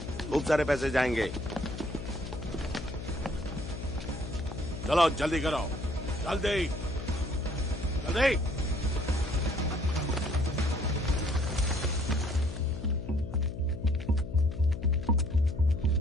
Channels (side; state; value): left; noise; hum, 9 dB below the sound